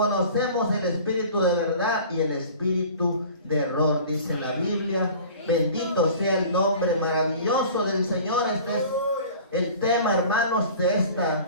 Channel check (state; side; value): inverted; both; correlation -0.43